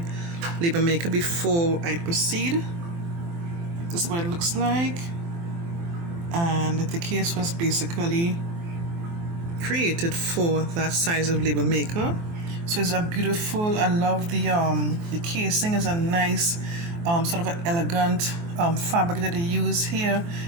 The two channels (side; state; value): left; late; 24 ms